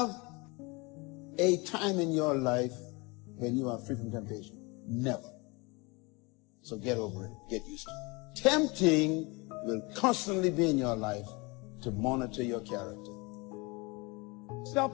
a time in your life when you are free from temptation. Never. So get over it. Get used to it. Tempting will constantly be in your life to monitor your character.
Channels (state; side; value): quieter; right; 26.7 dB